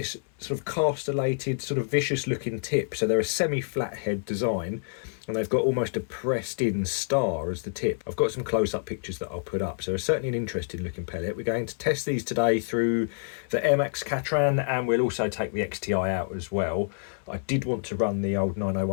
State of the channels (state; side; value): silent; right; 60 dB below the other